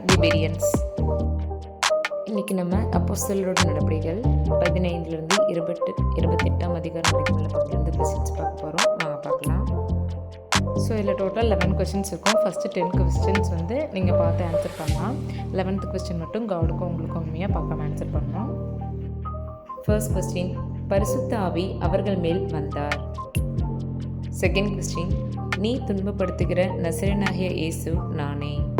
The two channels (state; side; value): identical; both; correlation 1.00